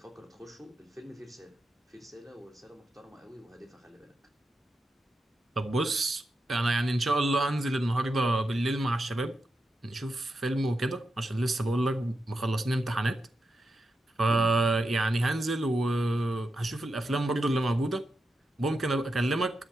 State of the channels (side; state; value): both; normal; correlation 0.87